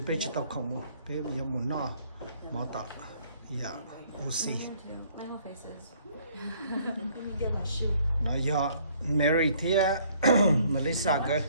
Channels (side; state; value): both; inverted; correlation -0.61